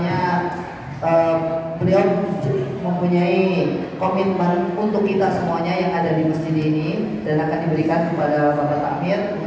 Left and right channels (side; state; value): both; identical; correlation 1.00